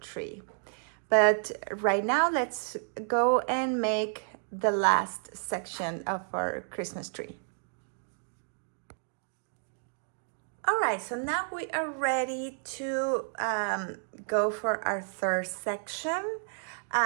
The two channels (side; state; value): left; silent; 57 dB below the other